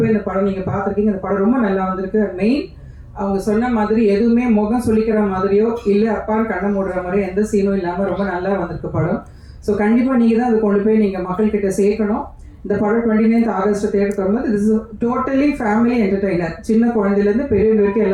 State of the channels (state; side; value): identical; both; correlation 1.00